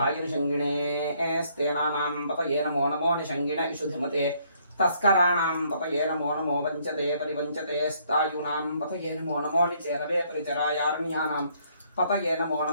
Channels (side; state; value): both; inverted; correlation -0.67